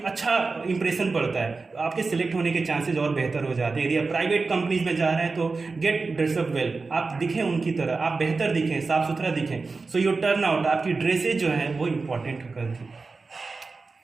अच्छा इंप्रेशन पड़ता है, आपके सिलेक्ट होने के चांसेस और बेहतर हो जाते हैं। यदि आप प्राइवेट कंपनीज में जा रहे हैं तो गेट ड्रेसअप वेल, आप दिखें उनकी तरह, आप बेहतर दिखें, साफ सुथरा दिखें। सो योर टर्न आउट, आपकी ड्रेसेज जो है वो इंपॉर्टेंट करती है।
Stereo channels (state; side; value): quieter; left; 4.1 dB